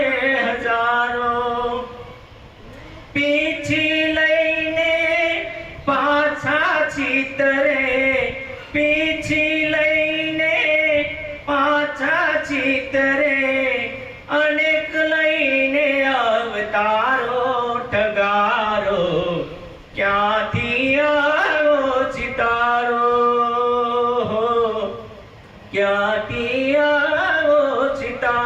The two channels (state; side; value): identical; both; correlation 1.00